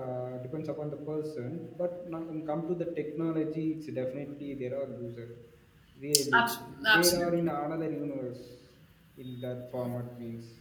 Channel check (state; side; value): identical; both; correlation 1.00